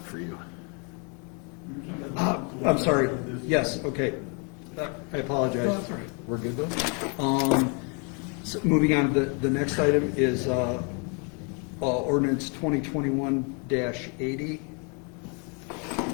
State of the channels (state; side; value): quieter; right; 35.7 dB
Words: for you. I'm sorry. Yes, okay. I apologize. We're good though? So moving on, the next item is ordinance 2021-80.